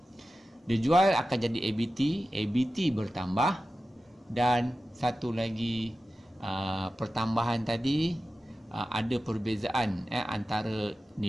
Dia jual akan jadi ABT, ABT bertambah, dan satu lagi pertambahan tadi ada perbezaan antara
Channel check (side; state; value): both; normal; correlation 0.94